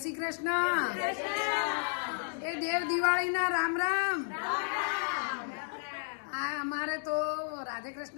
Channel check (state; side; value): silent; right; digital silence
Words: શ્રી કૃષ્ણ. એ દેવ દિવાળીના રામ રામ. આ અમારે તો રાધે